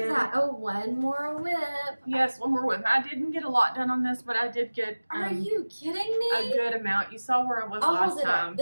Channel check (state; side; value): inverted; both; correlation -1.00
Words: that. Oh, one more whip. Yes, one more whip. I didn't get a lot done on this, but I did get Are you kidding me? a good amount. You saw where I was I'll last hold it time. up.